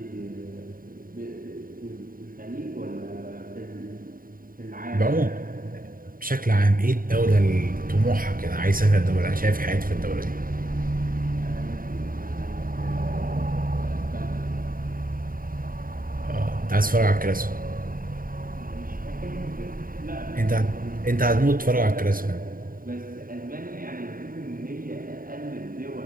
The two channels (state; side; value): late; left; 0.41 ms